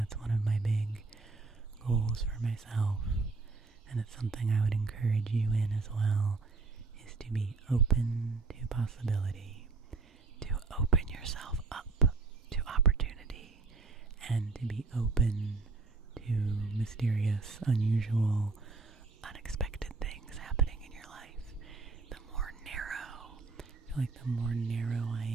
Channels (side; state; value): left; quieter; 4.0 dB